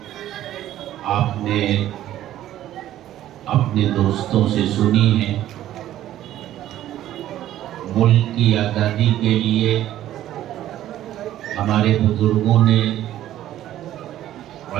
آپ نے اپنے دوستوں سے سنی ہیں۔ ملک کی آزادی کے لیے ہمارے بزرگوں نے،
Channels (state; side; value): quieter; left; 12.9 dB